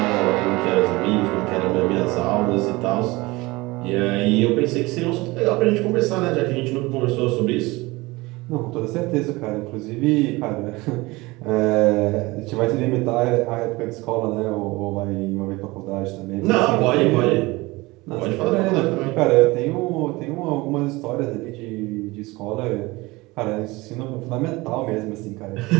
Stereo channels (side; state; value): left; quieter; 22.1 dB